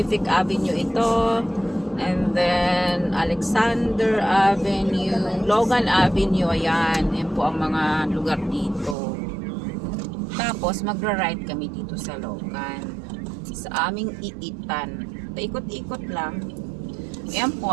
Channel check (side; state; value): left; drops out; at 9.0 s